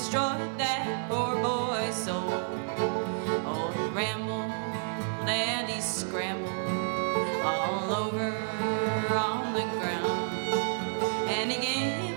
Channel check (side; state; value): left; silent; digital silence